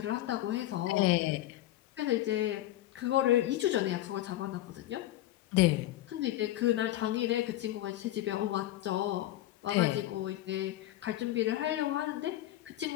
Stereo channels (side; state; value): right; quieter; 14.7 dB